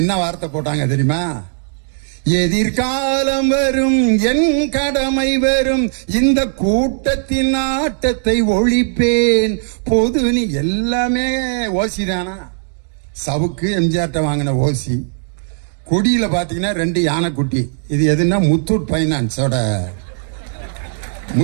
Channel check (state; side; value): silent; left; digital silence